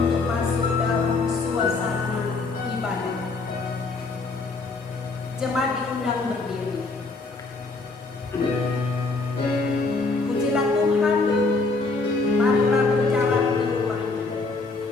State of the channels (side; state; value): right; quieter; 3.7 dB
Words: masuk dalam suasana ibadah. Jemaat diundang berdiri. Pujilah Tuhan, marilah berjalan ke rumahnya.